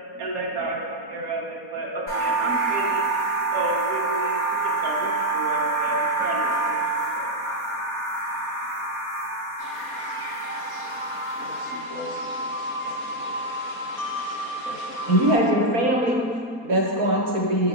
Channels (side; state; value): left; late; 4.2 ms